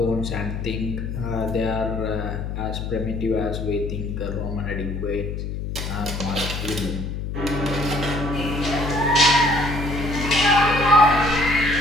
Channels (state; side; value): noise; left; hum, 5 dB below the sound